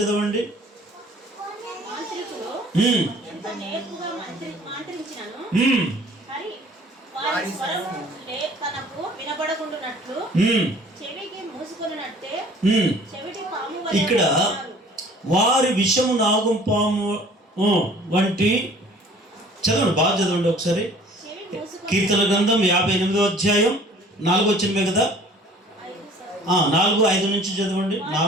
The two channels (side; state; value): both; normal; correlation 0.51